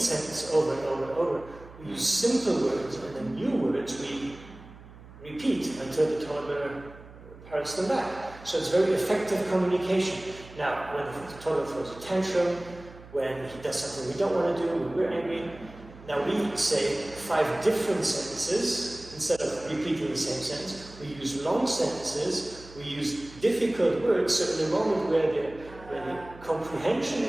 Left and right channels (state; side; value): noise; right; hum, 19 dB below the sound